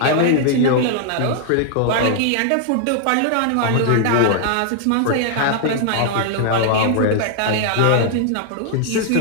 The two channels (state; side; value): different; both; correlation 0.00